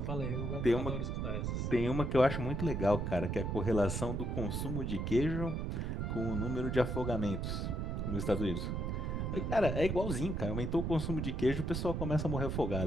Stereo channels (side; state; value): right; noise; rumble, 1 dB below the sound